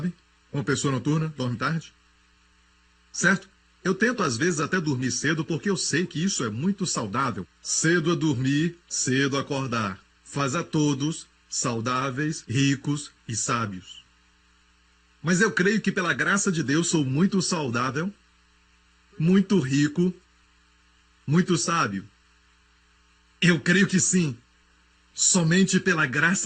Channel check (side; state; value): both; identical; correlation 1.00